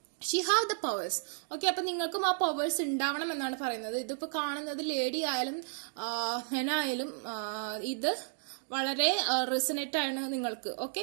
she have the powers. Okay, അപ്പൊ നിങ്ങൾക്കും ആ powers ഉണ്ടാവണം എന്നാണ് പറയുന്നത്. ഇതിപ്പോ കാണുന്നത് lady ആയാലും ഹെനായാലും ഇത് വളരെ റെസനേറ്റ് ആണ് നിങ്ങൾക്ക്. ഓക്കെ,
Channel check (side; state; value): left; silent; digital silence